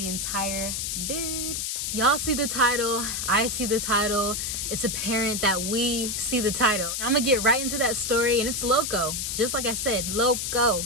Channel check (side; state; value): left; noise; hiss, 2 dB below the sound